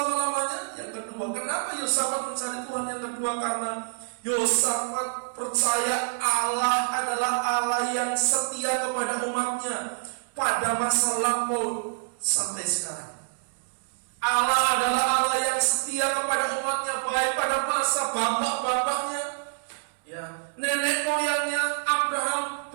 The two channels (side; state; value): left; silent; digital silence